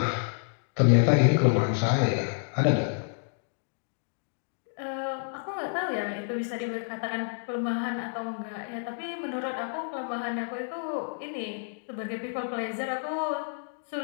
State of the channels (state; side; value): silent; right; digital silence